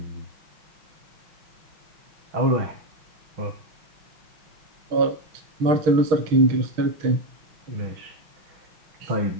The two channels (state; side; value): late; left; 6.4 ms